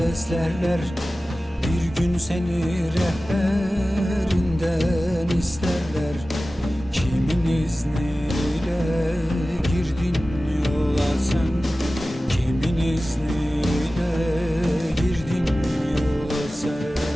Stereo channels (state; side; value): normal; both; correlation 0.96